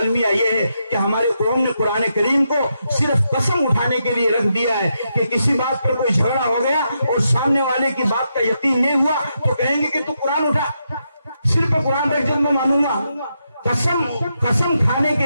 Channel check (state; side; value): inverted; both; correlation -0.82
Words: یہ ہے کہ ہماری قوم نے قرآن کریم کو صرف قسم اٹھانے کے لیے رکھ دیا ہے کہ کسی بات پر کوئی جھگڑا ہو گیا اور سامنے والے کی بات کا یقین نہیں ہوا تو کہیں گے کہ تو قرآن اٹھا، صرف قرآن رکھ جب میں مانوں گا۔ قسم کھانے